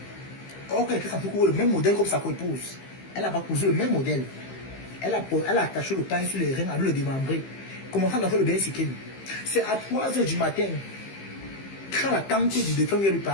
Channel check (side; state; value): right; late; 15 ms